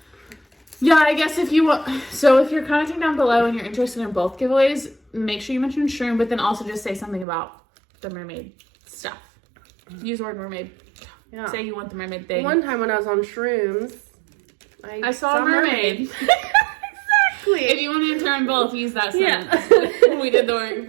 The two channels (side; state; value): left; drops out; at 7.2 s